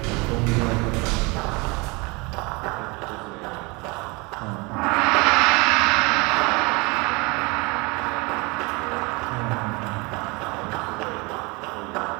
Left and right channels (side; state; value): left; quieter; 27.1 dB